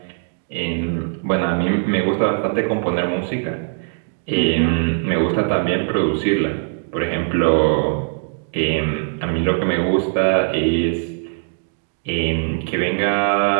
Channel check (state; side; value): silent; left; digital silence